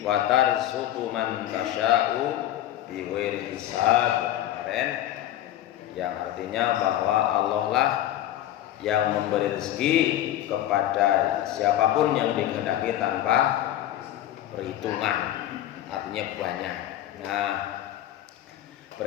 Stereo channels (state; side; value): quieter; right; 12.8 dB